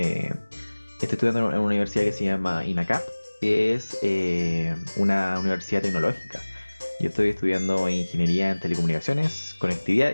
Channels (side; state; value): both; inverted; correlation -1.00